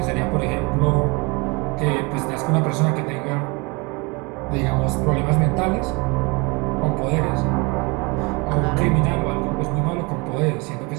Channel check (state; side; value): quieter; left; 27.8 dB